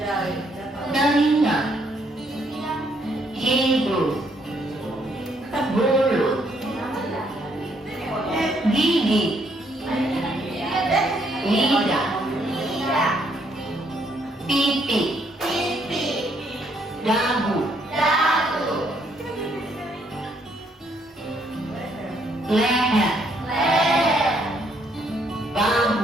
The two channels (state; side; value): normal; both; correlation 0.70